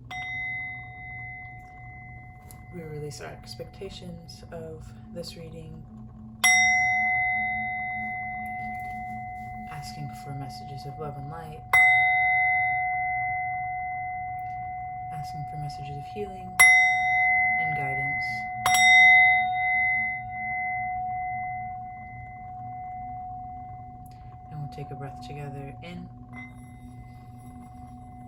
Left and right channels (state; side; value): identical; both; correlation 1.00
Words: we release our expectations of this reading, asking for messages of love and light, asking for messages of healing and guidance. And we'll take a breath together in